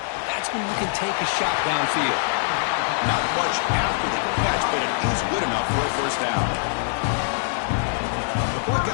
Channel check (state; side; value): silent; right; digital silence